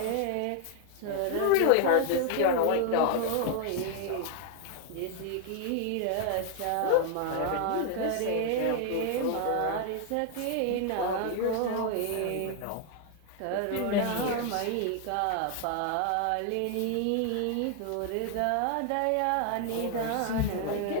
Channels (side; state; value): both; different; correlation 0.00